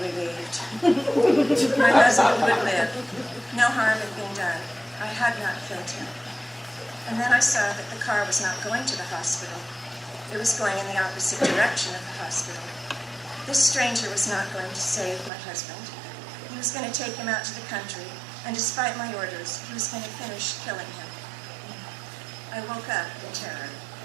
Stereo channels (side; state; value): left; drops out; at 15.3 s